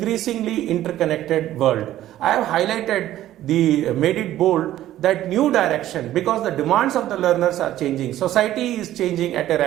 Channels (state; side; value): quieter; left; 13.4 dB